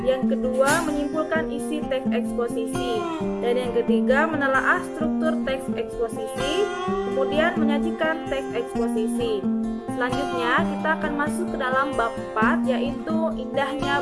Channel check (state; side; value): identical; both; correlation 1.00